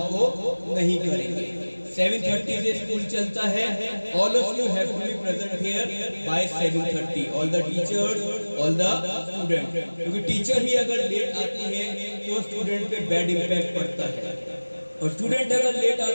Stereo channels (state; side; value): inverted; both; correlation -1.00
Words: नहीं करेंगे। 7:30 से स्कूल चलता है। All of you have to be present here by 7:30, all the teachers, all the student, क्योंकि टीचर ही अगर लेट आती है तो स्टूडेंट पे बैड इम्पैक्ट पड़ता है, और स्टूडेंट अगर लेट